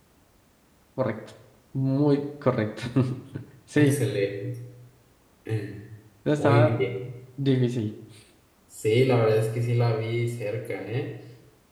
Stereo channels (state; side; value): identical; both; correlation 1.00